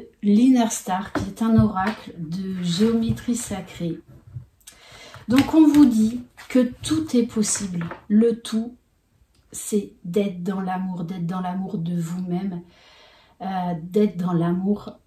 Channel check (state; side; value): identical; both; correlation 1.00